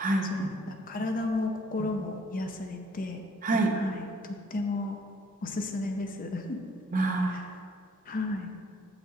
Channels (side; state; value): both; normal; correlation 0.63